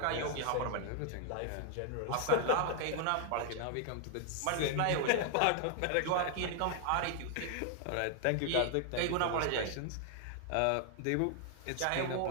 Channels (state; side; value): different; both; correlation 0.00